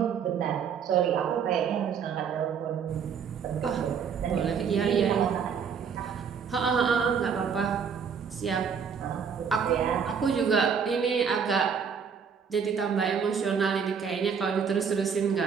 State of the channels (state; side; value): quieter; left; 6.7 dB